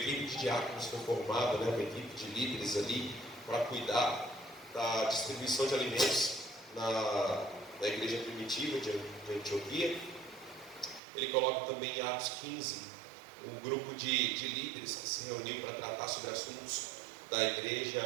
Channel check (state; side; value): drops out; left; at 11.0 s